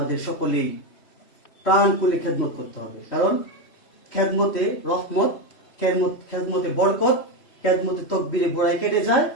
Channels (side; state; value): right; late; 3.1 ms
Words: সকলেই প্রাণ খুলে খেদমত করতে হবে। কারণ খেদমতে রহমত, খেদমতে বরকত, খেদমতে তকবীরে গোড়ায় কেটে যায়,